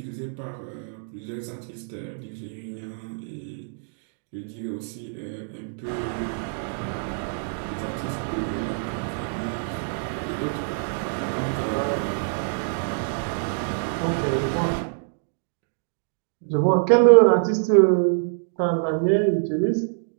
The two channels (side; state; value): left; silent; digital silence